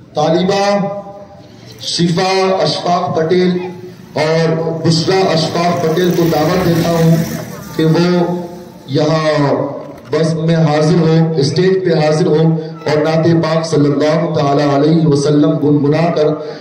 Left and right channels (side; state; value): both; identical; correlation 1.00